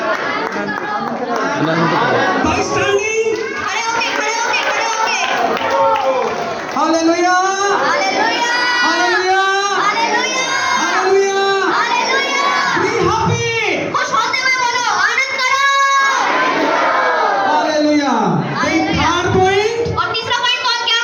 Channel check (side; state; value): both; identical; correlation 1.00